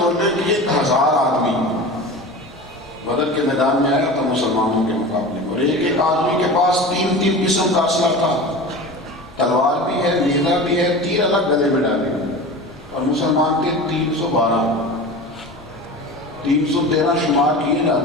کے 1000 آدمی بدر کے میدان میں آیا تھا مسلمانوں کے مقابلے میں، اور ایک ایک آدمی کے پاس 3 قسم کا اسلحہ تھا، تلوار بھی ہے، نیزہ بھی ہے، تیر الگ گلے میں ڈالے، اور مسلمان کے 313 شمار کیے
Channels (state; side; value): normal; both; correlation 0.33